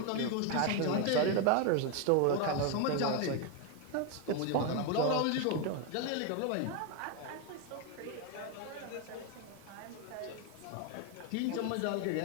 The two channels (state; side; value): different; both; correlation 0.02